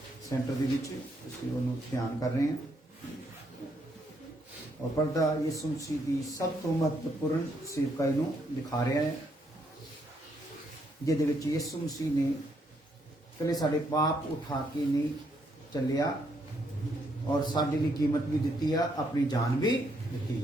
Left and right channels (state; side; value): normal; both; correlation 0.74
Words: सेंटर के ध्यान कर रहे हैं। और पर्दा यीशु मसीह की सब तो महत्वपूर्ण सेवकाई नूं दिखा रहा है, जिहदे विच यीशु मसीह ने कले साडे पाप उठा के नहीं चलिया और साडे लई कीमत भी दी है, अपनी जान भी दी